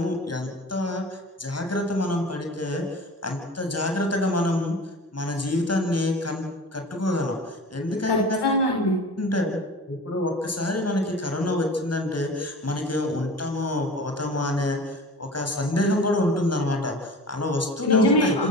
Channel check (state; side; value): normal; both; correlation 0.38